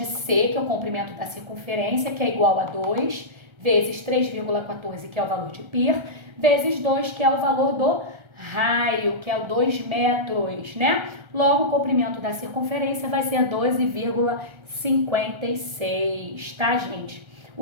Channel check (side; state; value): left; late; 1.3 ms